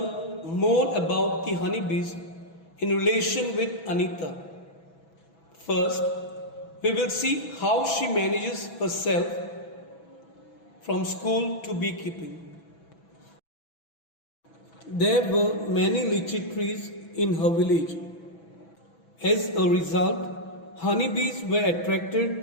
more about the honeybees in relation with Anita. First, we will see how she manages herself from school to beekeeping. There were many lychee trees in her village. As a result, honeybees were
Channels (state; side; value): late; right; 6.1 ms